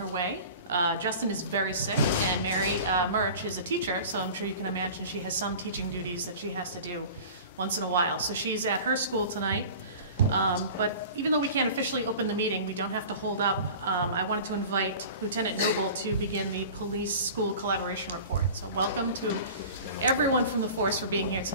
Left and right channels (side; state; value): both; inverted; correlation -0.39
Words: way. Justin is very sick, and Mary Murch is a teacher, so I'm sure you can imagine she has some teaching duties that she has to do once in a while. So she's at her school tonight. But even though we can't officially open the meeting, we don't have to hold up. I wanted to invite Lieutenant Noble to begin the police school collaboration report. So welcome to everyone from the force for being here